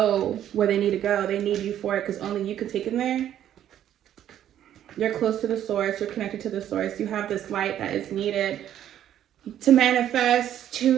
where they need to go. They need you for it because only you can take them there. You're close to the source. You're connected to the source. You have this light that is needed to manifest,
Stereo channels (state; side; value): quieter; left; 11.0 dB